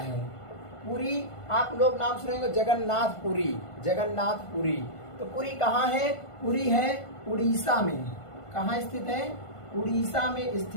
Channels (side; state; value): right; late; 1.5 ms